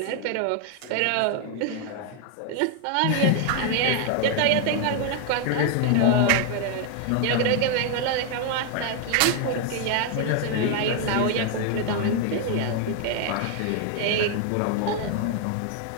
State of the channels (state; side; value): different; both; correlation 0.00